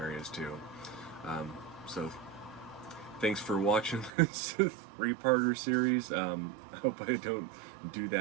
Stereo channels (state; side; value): drops out; left; at 4.1 s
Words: too. So thanks for watching this three-parter series. I hope I don't do